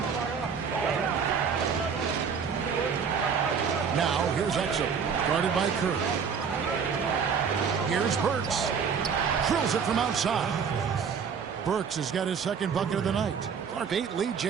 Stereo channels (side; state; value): left; quieter; 6.5 dB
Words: Now, here's Exum, guarded by Curry. Here's Burks. Drills it from outside. Burks has got his 2nd bucket of the night. Clark, 8 lead